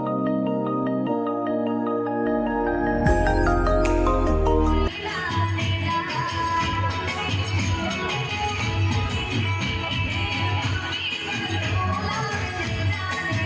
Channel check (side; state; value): both; identical; correlation 1.00